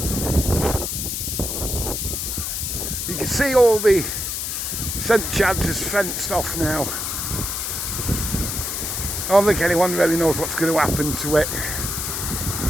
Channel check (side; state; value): left; noise; hiss, 3 dB below the sound